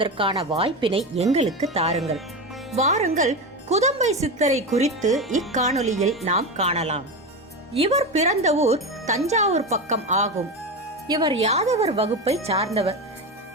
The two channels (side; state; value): both; normal; correlation 0.20